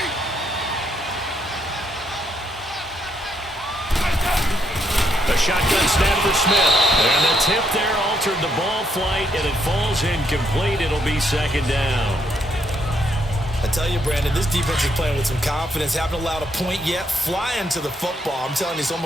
A shotgun snap for Smith. And the tip there altered the ball flight, and it falls incomplete. It'll be 2nd down. I tell you, Brandon, this defense is playing with some confidence. Haven't allowed a point yet. Flying to the football. I'm telling you, it's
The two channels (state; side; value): normal; both; correlation 0.74